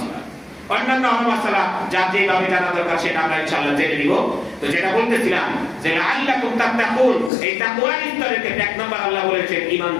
অন্যান্য মাসলা যা যেভাবে জানা দরকার সেটা আমরা ইনশাআল্লাহ জেনে নিব। তো যেটা বলতেছিলাম যে লাআল্লাকুম তাত্তাকুন, এই তাকওয়ার স্তরের ক্ষেত্রে 1 নম্বর আল্লাহ বলেছেন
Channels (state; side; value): drops out; right; at 7.3 s